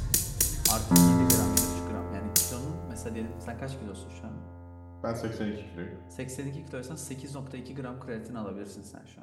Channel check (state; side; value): identical; both; correlation 1.00